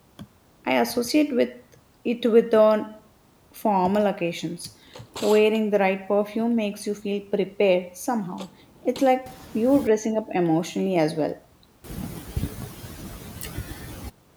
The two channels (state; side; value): identical; both; correlation 1.00